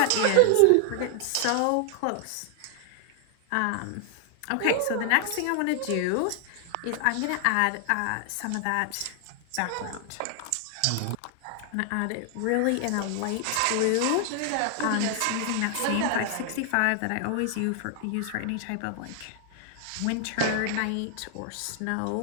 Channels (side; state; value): both; different; correlation 0.00